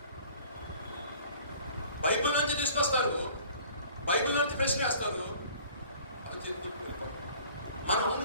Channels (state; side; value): inverted; both; correlation -0.50